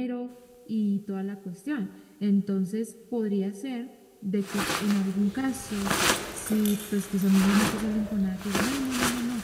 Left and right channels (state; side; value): identical; both; correlation 1.00